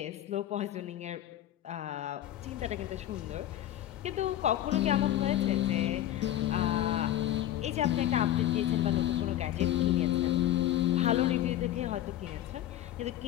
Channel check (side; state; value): right; quieter; 12.6 dB